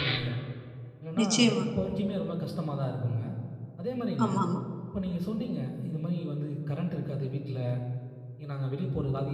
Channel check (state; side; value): identical; both; correlation 1.00